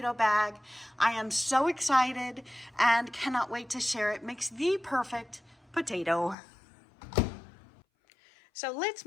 bag. I am so excited and cannot wait to share it. Makes the perfect potato. So let's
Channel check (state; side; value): drops out; right; at 6.4 s